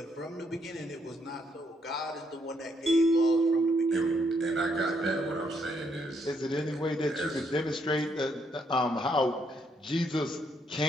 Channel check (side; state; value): both; normal; correlation 0.73